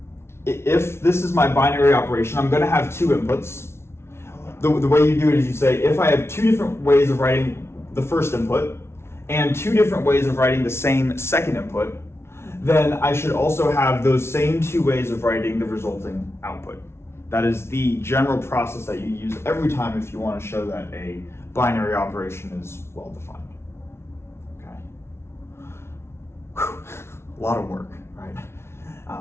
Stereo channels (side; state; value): right; late; 0.12 ms